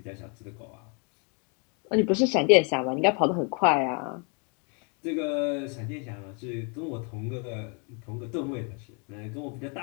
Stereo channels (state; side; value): quieter; right; 36.7 dB